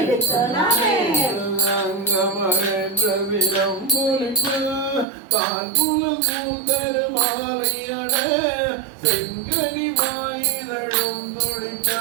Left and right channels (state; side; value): drops out; left; at 5.1 s